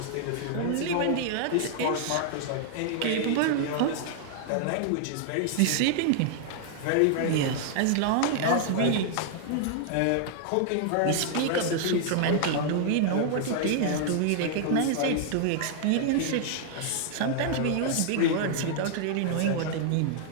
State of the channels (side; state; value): both; different; correlation 0.00